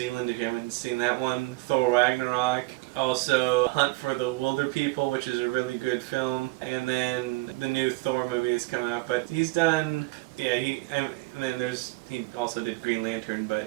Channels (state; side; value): quieter; left; 23.1 dB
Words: if you haven't seen that one. Thor Ragnarok. Also, Hunt for the Wilder People, which is a really good film. And then the new Thor movie is coming out. But he's done... Yeah, he also did Green Lantern,